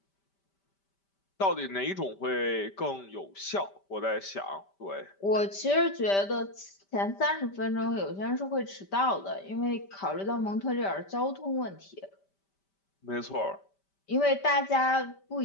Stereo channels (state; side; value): late; right; 5.1 ms